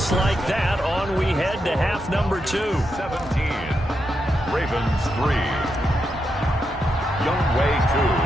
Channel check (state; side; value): normal; both; correlation 0.84